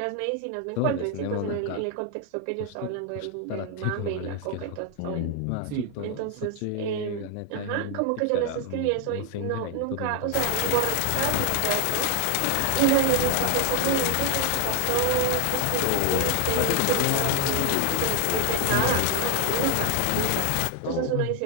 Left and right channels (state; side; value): different; both; correlation 0.00